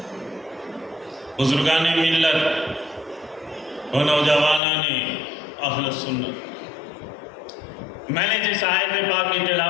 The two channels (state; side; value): drops out; right; at 4.6 s